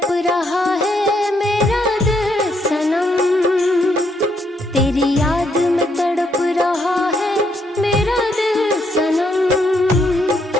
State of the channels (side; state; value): both; normal; correlation 0.74